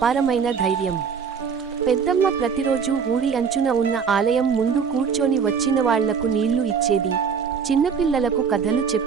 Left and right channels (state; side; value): quieter; left; 6.4 dB